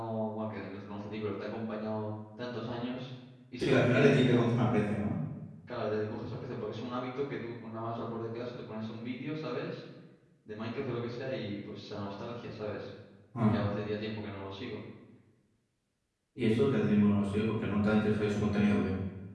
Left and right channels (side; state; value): both; identical; correlation 1.00